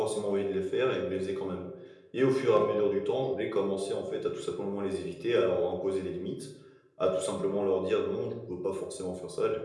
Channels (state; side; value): identical; both; correlation 1.00